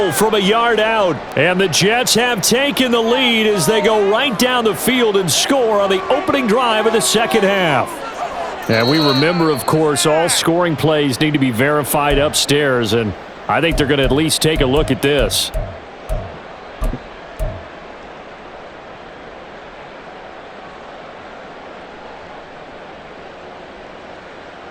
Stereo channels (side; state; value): both; identical; correlation 1.00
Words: from a yard out. And the Jets have taken the lead as they go right down the field and score on the opening drive of the second half. And we remember, of course, all scoring plays need to be verified upstairs, and I think they're going to at least take a look at this.